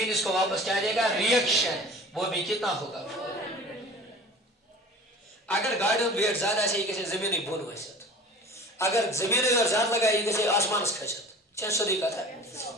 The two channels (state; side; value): normal; both; correlation 0.41